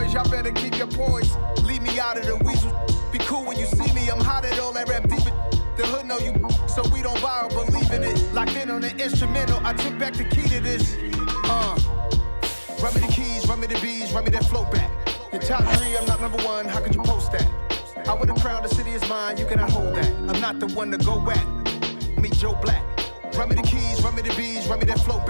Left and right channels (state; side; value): inverted; both; correlation -1.00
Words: y'all better keep your poise. Leave me out of the weasel. Be cool when you see me, I'm hot at all that rap deep. The hood know you, so we don't borrow, believe in it. Locked in on the instrumental, I took back the key to this. Run me the keys, run me the bees, run me that flow back. Your top three, I'm not number one, how could you post that? I would have crowned the city is mine, you cannot hold that. I'm not the one to go at. Meet Joe Black. Run me the keys, run me the bees, run me that flow